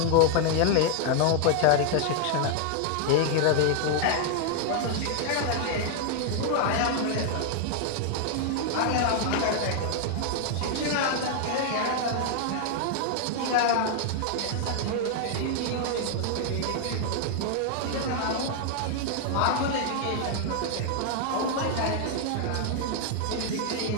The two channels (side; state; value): both; different; correlation 0.00